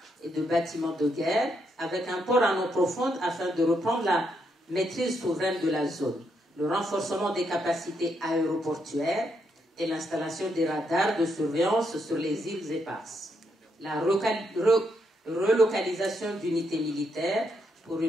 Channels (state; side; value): normal; both; correlation 0.78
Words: et de bâtiments de guerre avec un port en eau profonde afin de reprendre la maîtrise souveraine de la zone. Le renforcement des capacités aéroportuaires et l'installation des radars de surveillance sur les îles éparses. La relocalisation d'unités militaires pour